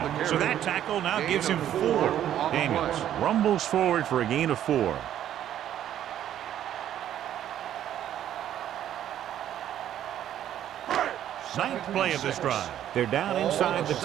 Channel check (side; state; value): left; quieter; 11.1 dB